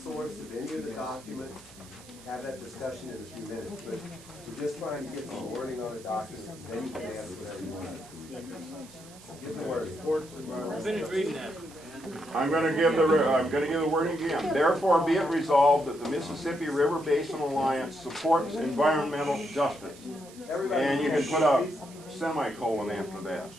of any of the documents, have that discussion in a few minutes, but we're just trying to get some wording on a document, then you can ask whatever you want. Give the word. Finish reading that. I'm going to give the wording again. Therefore, be it resolved that the Mississippi River Basin Alliance supports environmental justice. And you can put a semicolon after that.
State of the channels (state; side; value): noise; right; hiss, 21 dB below the sound